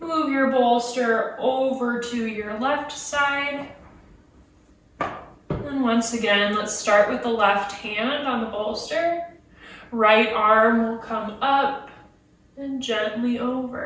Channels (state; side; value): identical; both; correlation 1.00